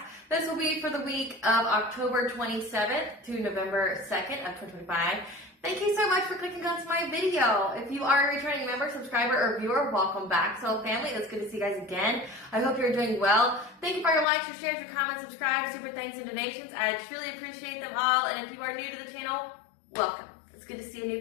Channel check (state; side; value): drops out; right; at 14.2 s